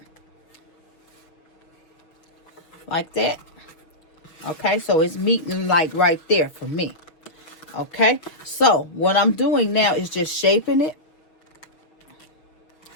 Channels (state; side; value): late; right; 6.5 ms